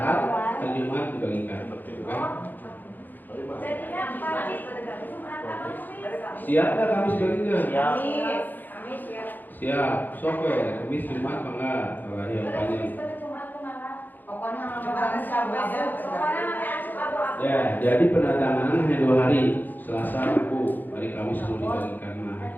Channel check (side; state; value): right; late; 0.087 ms